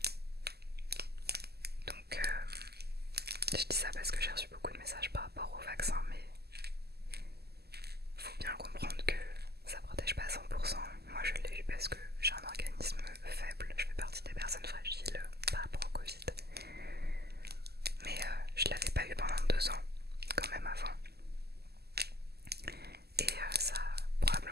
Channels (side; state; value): left; late; 0.46 ms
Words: Donc je dis ça parce que j'ai reçu beaucoup de messages par rapport au vaccin, mais faut bien comprendre que ça protège pas à 100%. Moi je l'ai eu parce que j'ai un organisme faible, je fais partie des personnes fragiles par rapport au Covid. Mais je l'avais pas eu pendant 2 ans, quand même avant. Et ça a